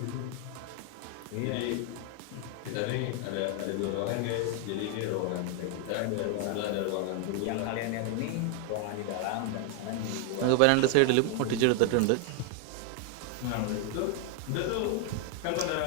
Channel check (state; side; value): different; both; correlation 0.00